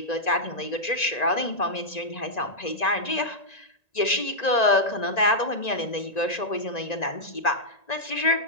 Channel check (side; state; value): right; late; 1.9 ms